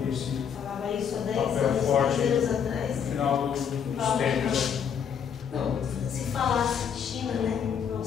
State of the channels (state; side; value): quieter; right; 7.6 dB